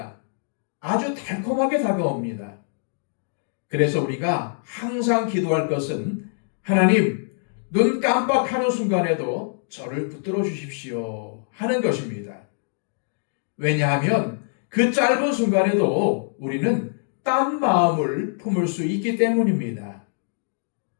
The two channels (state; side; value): silent; right; digital silence